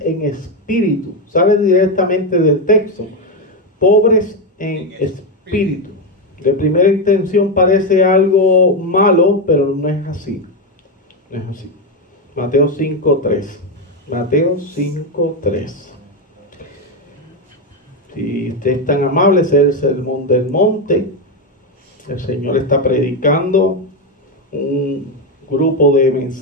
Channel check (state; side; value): normal; both; correlation 0.09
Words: en Espíritu. Sale directamente del texto. Pobres en Espíritu. De primera intención parece algo malo, pero no es así. No es así. Mateo 5:3. Mateo 5:3. Si usted es tan amable, es el sermón del monte. El Señor está predicando un grupo de